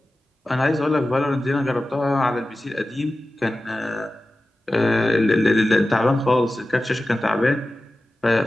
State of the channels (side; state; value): both; normal; correlation 0.95